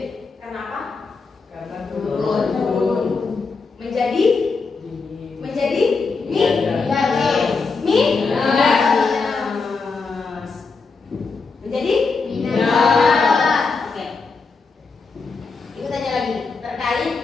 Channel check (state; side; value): quieter; right; 4.5 dB